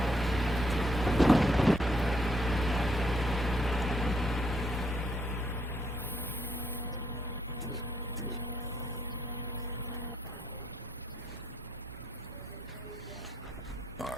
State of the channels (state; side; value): normal; both; correlation 0.73